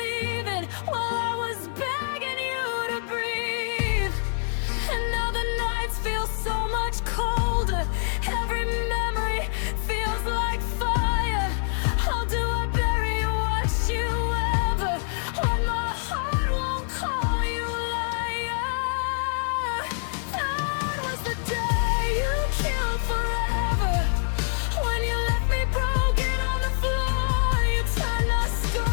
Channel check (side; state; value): right; silent; digital silence